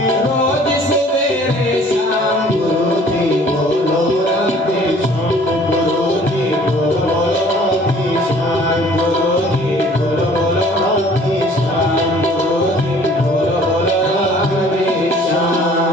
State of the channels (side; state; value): both; normal; correlation 0.53